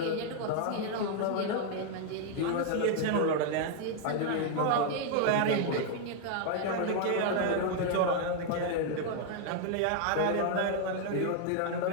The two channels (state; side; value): different; both; correlation 0.00